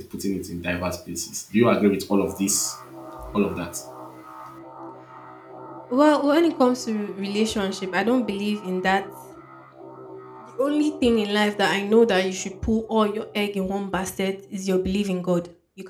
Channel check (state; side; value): identical; both; correlation 1.00